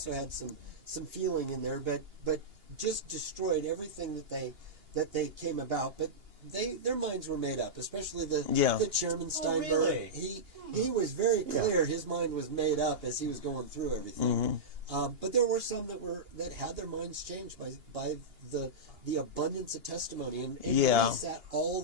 had some feeling in there, but just destroyed everything that they came about. But their minds were made up, especially the chairman Steinberg. Oh, really? He was very clear. His mind was made up as he was going through everything. But there were some that had their minds changed by the abundance of testimony, and he sat all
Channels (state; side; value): late; left; 2.8 ms